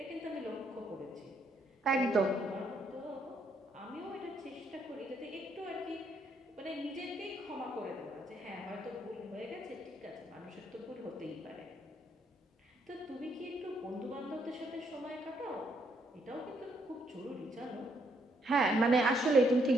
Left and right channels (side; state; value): both; normal; correlation 0.73